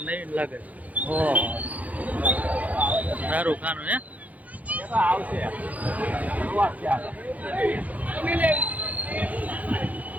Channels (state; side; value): late; left; 0.075 ms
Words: નહીં લાગે. ઓહો, સારું ખાનું હે.